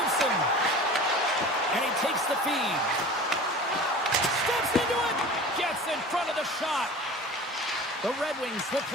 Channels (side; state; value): both; normal; correlation 0.38